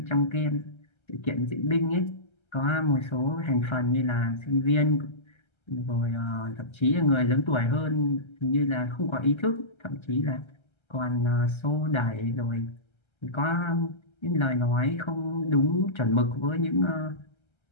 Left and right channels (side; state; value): right; late; 1.3 ms